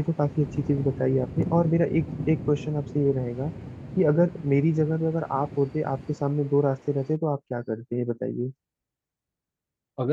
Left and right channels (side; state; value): both; identical; correlation 1.00